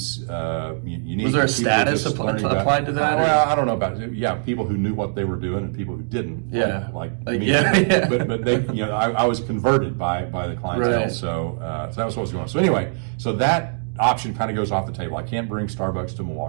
unique. Was there a status applied to that? Well, I don't know about it. Yeah, people who knew what they were doing and people who didn't. Yeah, like me. Yeah. But they, I was converted by the clientele. Right. So that was what was going on. So anyway, so that option kind of goes off the table. I can't bring Starbucks to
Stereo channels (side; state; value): left; silent; digital silence